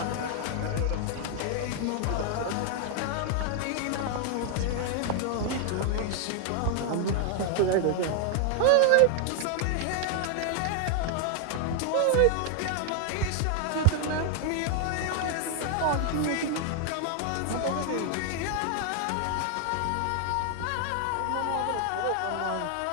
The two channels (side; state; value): both; different; correlation 0.00